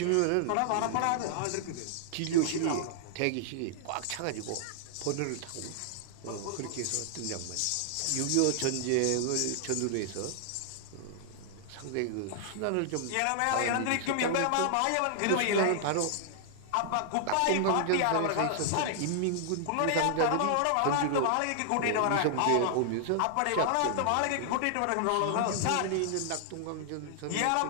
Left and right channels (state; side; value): different; both; correlation -0.01